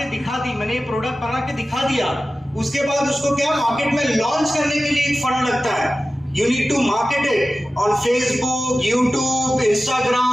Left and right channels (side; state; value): both; normal; correlation 0.95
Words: दिखा दी, मैंने ये प्रोडक्ट बना के दिखा दिया, उसके बाद उसको क्या मार्केट में लॉन्च करने के लिए एक फंड लगता है। You need to market it on Facebook, YouTube,